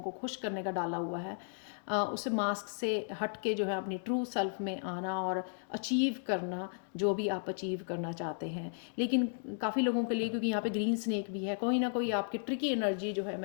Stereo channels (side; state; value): right; silent; digital silence